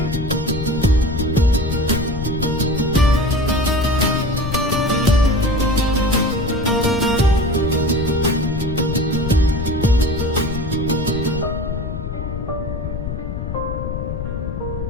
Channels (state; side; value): noise; left; rumble, 5 dB below the sound